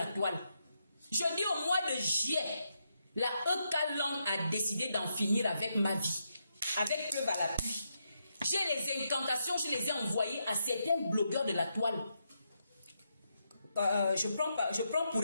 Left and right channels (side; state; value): both; inverted; correlation -0.82